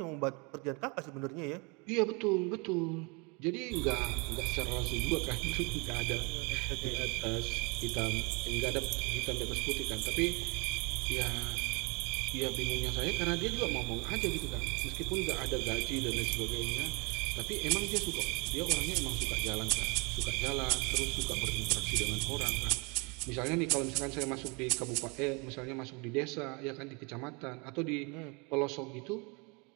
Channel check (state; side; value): quieter; left; 30.5 dB